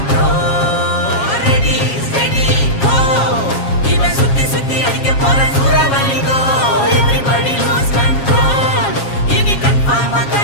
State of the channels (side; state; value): right; late; 7.3 ms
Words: ப்ரோ ரெடி ரெடி கோ சிவ சுத்தி சுத்தி அடிக்க போற சூறாவளி ப்ரோ எவ்ரிபடி லூஸ் கண்ட்ரோல் இனி கன்ஃபார்மா